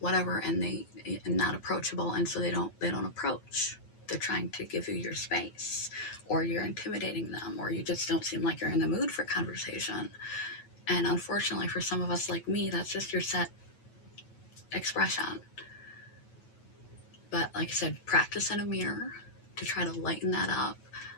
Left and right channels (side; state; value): right; late; 9.3 ms